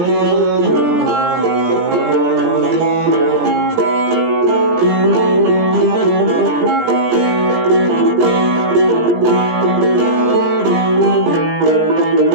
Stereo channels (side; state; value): left; late; 17 ms